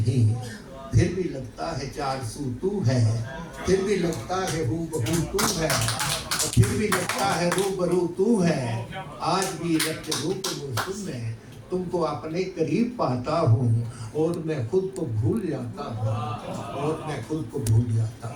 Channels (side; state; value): both; identical; correlation 1.00